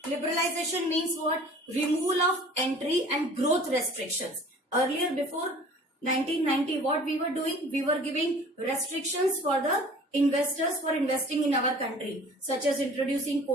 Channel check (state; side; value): normal; both; correlation 0.47